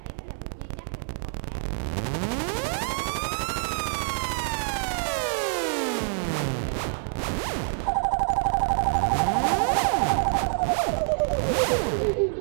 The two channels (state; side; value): silent; left; digital silence